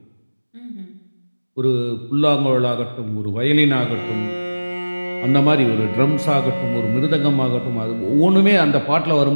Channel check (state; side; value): inverted; both; correlation -1.00